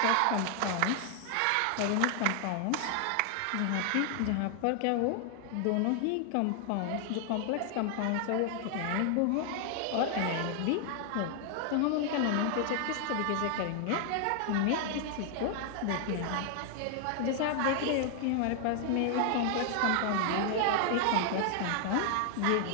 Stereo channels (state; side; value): different; both; correlation 0.00